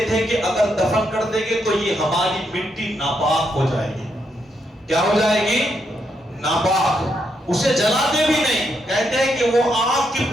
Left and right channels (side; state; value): both; normal; correlation 0.79